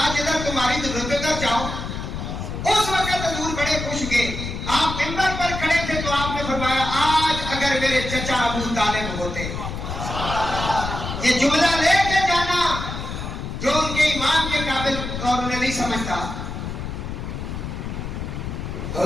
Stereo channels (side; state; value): left; noise; rumble, 6 dB below the sound